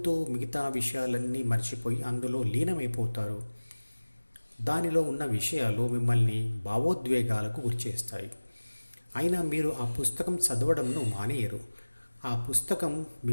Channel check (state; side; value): inverted; both; correlation -1.00